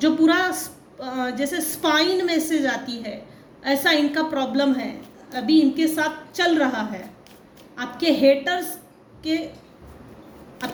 जो पूरा जैसे स्पाइन में से जाती है, ऐसा इनका प्रॉब्लम है, अभी इनके साथ चल रहा है। आपके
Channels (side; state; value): both; identical; correlation 1.00